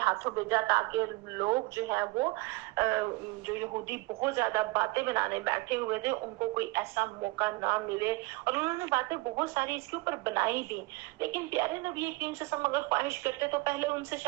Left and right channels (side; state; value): left; quieter; 23.6 dB